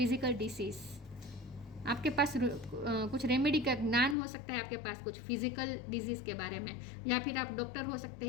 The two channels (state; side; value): drops out; right; at 4.2 s